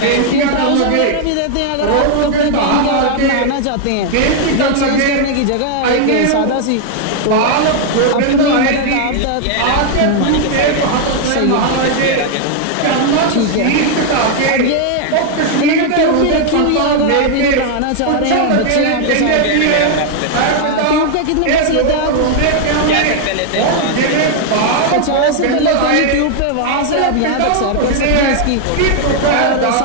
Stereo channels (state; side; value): different; both; correlation 0.00